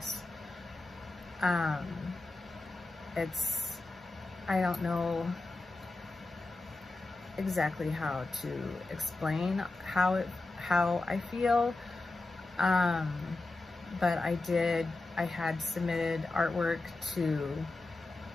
I don't know exactly how to explain how I feel, but I had submitted artwork to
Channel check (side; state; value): right; quieter; 3.1 dB